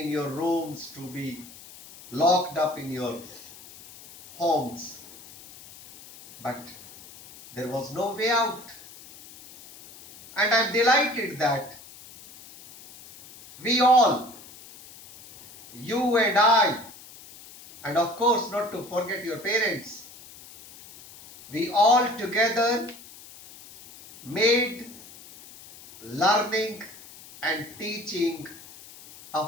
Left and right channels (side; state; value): left; noise; hiss, 19 dB below the sound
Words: your rooms, to be locked up in your homes, but there was no way out. And I'm delighted that we all, you and I, and of course not to forget your parents, we all together made learning and teaching